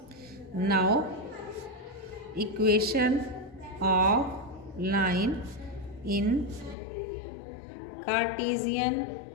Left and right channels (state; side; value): drops out; right; at 6.8 s